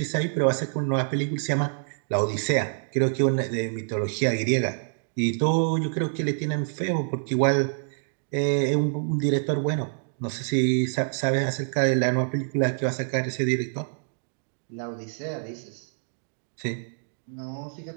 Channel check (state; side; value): silent; left; digital silence